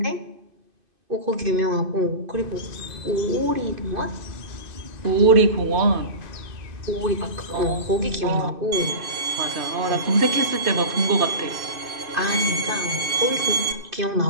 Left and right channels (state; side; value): late; left; 2.5 ms